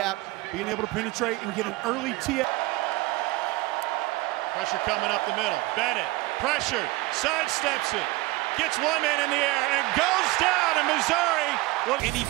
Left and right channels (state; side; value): quieter; left; 20.7 dB